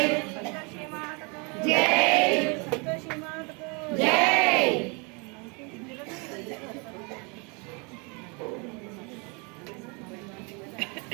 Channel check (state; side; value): quieter; left; 32.2 dB